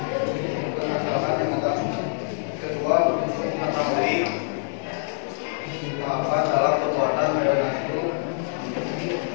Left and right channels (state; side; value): silent; right; digital silence